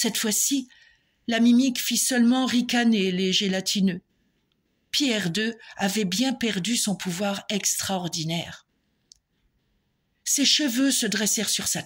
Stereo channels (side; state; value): both; identical; correlation 1.00